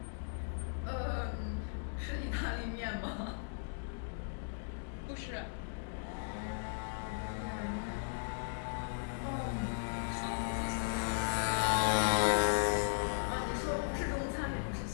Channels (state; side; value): silent; right; digital silence